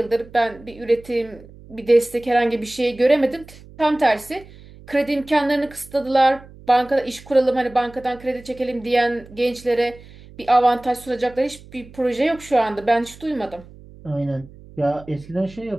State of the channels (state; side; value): noise; right; hum, 21 dB below the sound